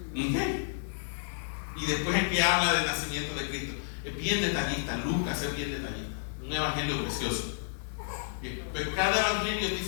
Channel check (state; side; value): silent; right; digital silence